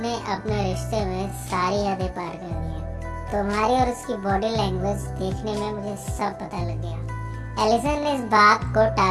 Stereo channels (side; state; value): both; identical; correlation 1.00